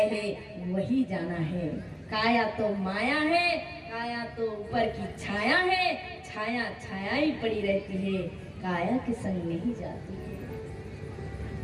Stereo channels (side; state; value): both; identical; correlation 1.00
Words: हैं, वही जाना है। काया तो माया है, काया तो ऊपर की छाया है, छाया ही पड़ी रहती है, काया के संग नहीं जाती है।